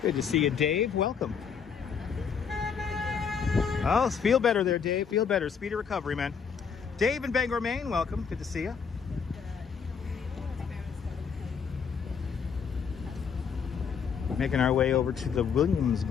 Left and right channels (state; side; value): quieter; right; 6.5 dB